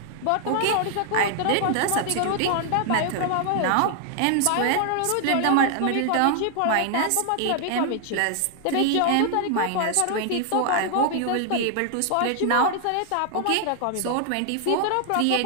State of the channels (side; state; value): both; different; correlation 0.00